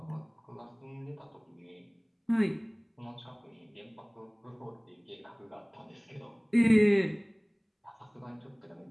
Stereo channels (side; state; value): both; identical; correlation 1.00